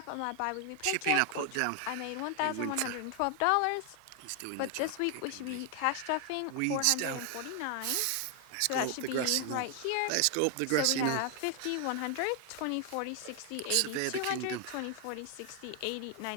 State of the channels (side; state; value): both; different; correlation 0.00